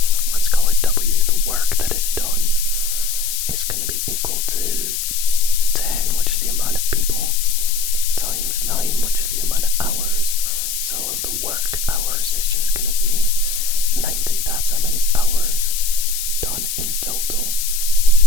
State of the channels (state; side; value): noise; left; hiss, 4 dB below the sound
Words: let's call it W, the work that is done is going to be equal to 10, which is the amount of people, times 9, which is the amount of hours. So the work hours is just going to be 90. That's how many hours done in total.